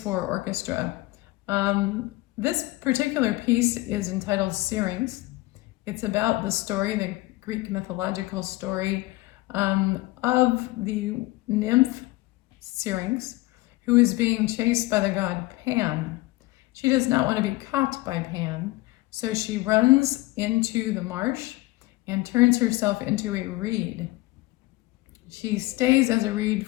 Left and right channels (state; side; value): quieter; right; 20.0 dB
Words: orchestra. This particular piece is entitled Syrinx. It's about the story, the Greek mythological story of the nymph Syrinx, who is being chased by the god Pan. She does not want to be caught by Pan, so she runs into the marsh and turns herself into a reed. She stays as a reed